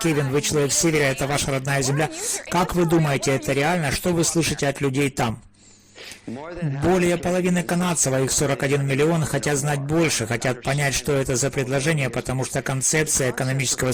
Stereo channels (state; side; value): identical; both; correlation 1.00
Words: вы человек с севера, это ваша родная земля. Как вы думаете, это реально? Что вы слышите от людей там? Более половины канадцев, а их 41 миллион, хотят знать больше, хотят понять, что это за предложение, потому что концепция экономического